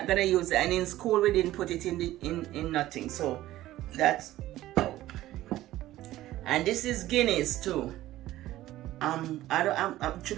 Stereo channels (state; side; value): quieter; left; 15.2 dB